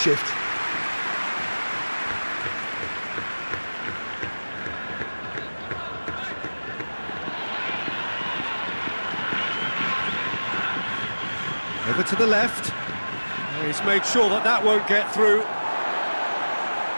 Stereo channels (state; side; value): inverted; both; correlation -1.00